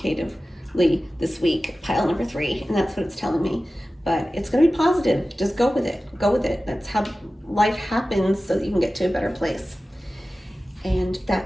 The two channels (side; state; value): both; normal; correlation 0.95